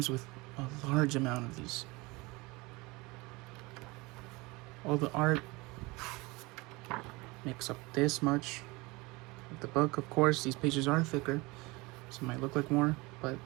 with a large amount of these. All the art makes up this much of the book. Of course, these pages are thicker, so it might look like more, but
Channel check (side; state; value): left; quieter; 24.0 dB